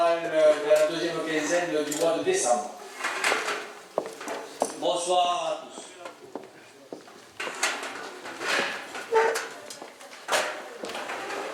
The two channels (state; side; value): identical; both; correlation 1.00